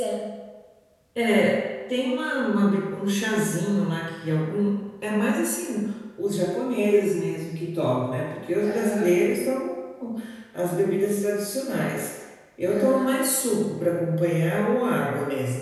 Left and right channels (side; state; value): both; identical; correlation 1.00